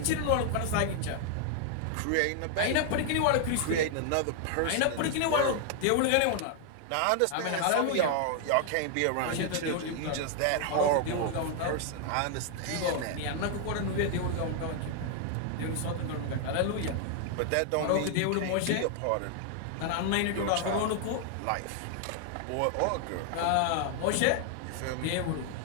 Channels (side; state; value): both; different; correlation 0.00